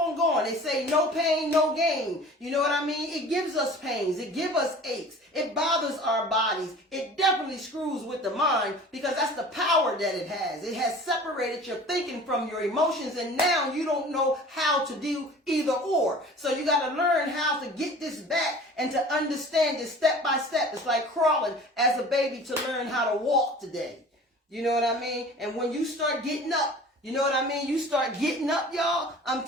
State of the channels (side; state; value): both; normal; correlation 0.43